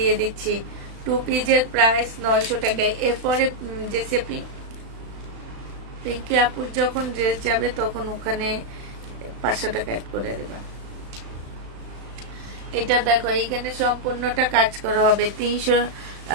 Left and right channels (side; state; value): left; late; 36 ms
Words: দিচ্ছি। 2 পিসের প্রাইস 900 টাকায়। এরপরে যে পিঙ্কি আপুর যখন ড্রেস যাবে তখন ওখানে 500 টাকা অ্যাড করে দেবা। এটা দেখো, এইখানে সম্পূর্ণটা কাজ করা হবে,